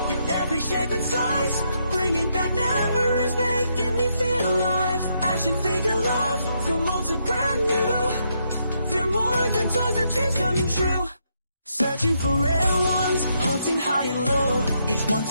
in every shape and size, bringing back memories, making me feel alive. Action figure love from old to brand new. They're more than toys, our dreams coming true. Searching for rare ones, hunting high and low. Each one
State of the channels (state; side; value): inverted; both; correlation -0.77